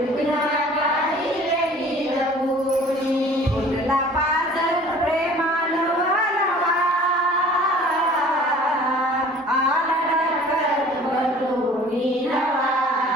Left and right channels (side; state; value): both; normal; correlation 0.48